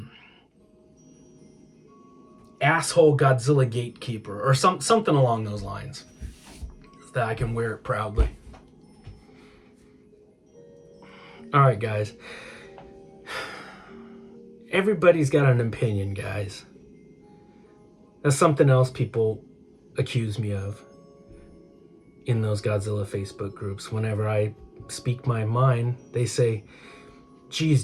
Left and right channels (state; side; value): identical; both; correlation 1.00